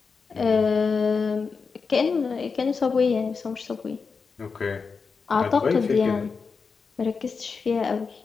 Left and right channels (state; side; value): quieter; right; 5.1 dB